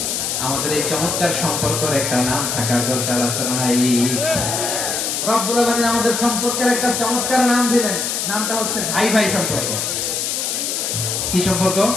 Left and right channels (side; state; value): left; noise; hiss, 1 dB below the sound